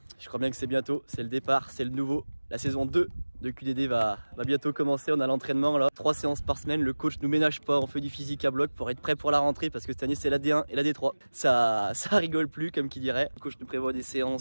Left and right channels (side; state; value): both; inverted; correlation -1.00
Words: je crois bien que c'est bientôt, c'est le départ, c'est le nouveau. La saison 2 de QDD va bientôt commencer, on a l'entraînement là. 3 séances par semaine, le coach nous ménage pas, on fait du physique à bloc pour être prêt pour la rentrée parce que cette année c'est la D1 et la D3. Ça rigole plus comme qui dirait. Le coach nous prévoit des